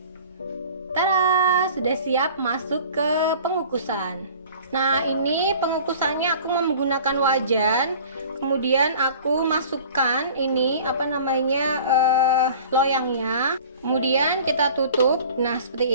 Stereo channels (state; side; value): inverted; both; correlation -0.45